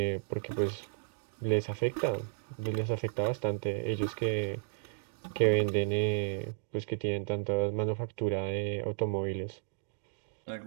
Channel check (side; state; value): left; silent; digital silence